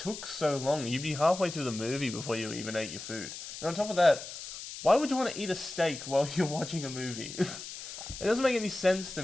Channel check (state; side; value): noise; left; hiss, 10 dB below the sound